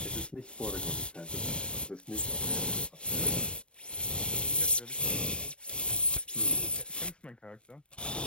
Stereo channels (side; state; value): right; late; 0.054 ms